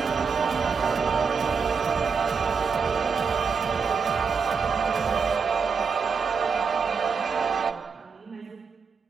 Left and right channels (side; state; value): left; quieter; 5.6 dB